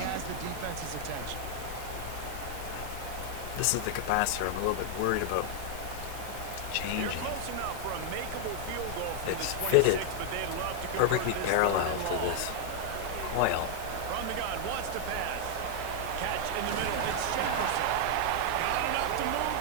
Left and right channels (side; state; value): both; different; correlation 0.00